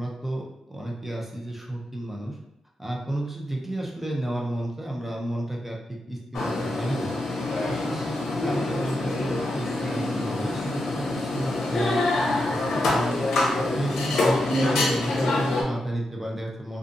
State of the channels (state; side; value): normal; both; correlation 0.86